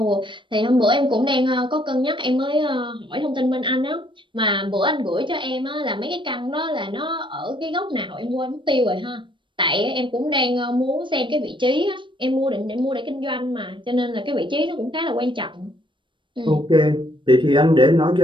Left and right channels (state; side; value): late; left; 0.24 ms